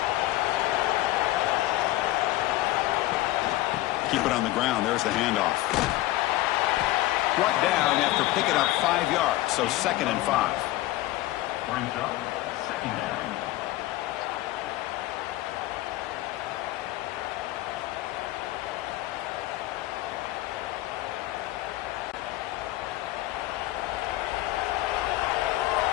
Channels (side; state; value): right; quieter; 16.8 dB